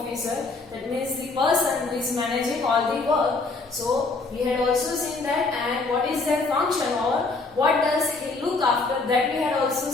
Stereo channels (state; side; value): quieter; right; 3.7 dB